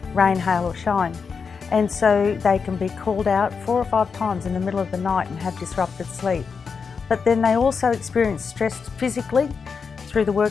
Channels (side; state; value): right; quieter; 5.6 dB